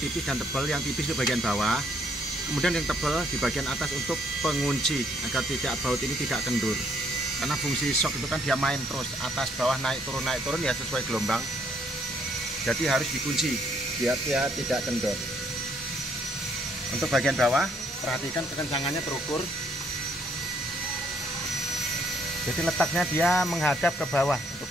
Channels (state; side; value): normal; both; correlation 0.68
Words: dan tebal. Yang tipis di bagian bawah, kemudian yang tebal di bagian atas untuk pengunci agar tidak baut ini tidak kendur. Karena fungsi shock itu kan dia main terus, atas bawah naik turun ya sesuai gelombang. Jadi harus dikunci biar dia tidak kendor. Untuk bagian bawah, perhatikan kekencangannya terukur. Jadi letaknya dia menghadap ke bawah untuk